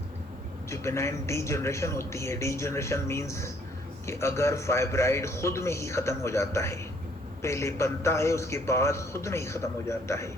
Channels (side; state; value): both; normal; correlation 0.64